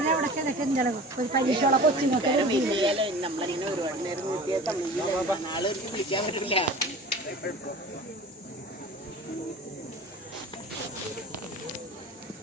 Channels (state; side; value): normal; both; correlation 0.39